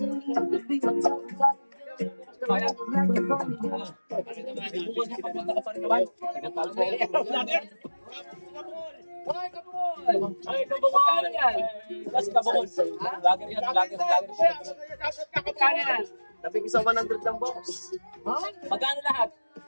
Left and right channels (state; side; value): inverted; both; correlation -1.00